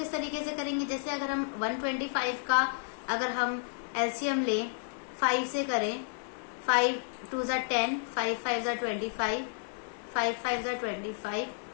तरीके से करेंगे, जैसे अगर हम 125 का अगर हम एलसीएम लें 5 से करें, 5 2 = 10, 5 5 = 25, 5 5 = 25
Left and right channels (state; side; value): silent; right; digital silence